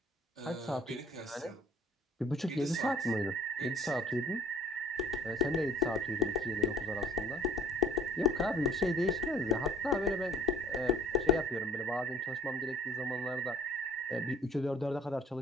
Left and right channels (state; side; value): normal; both; correlation 0.51